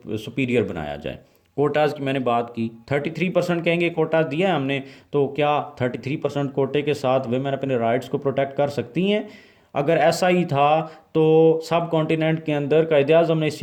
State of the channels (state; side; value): identical; both; correlation 1.00